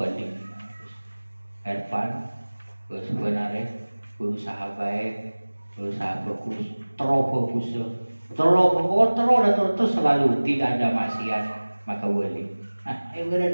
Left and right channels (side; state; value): both; inverted; correlation -1.00